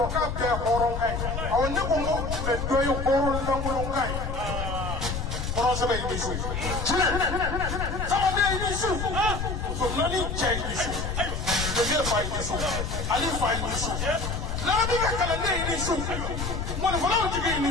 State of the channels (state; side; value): noise; left; rumble, 4 dB below the sound